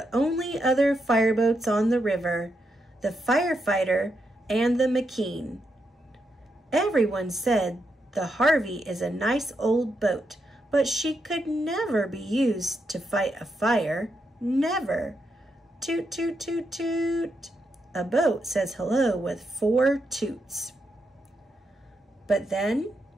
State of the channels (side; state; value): both; normal; correlation 0.83